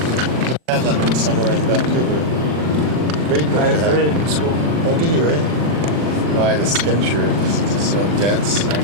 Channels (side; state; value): left; late; 40 ms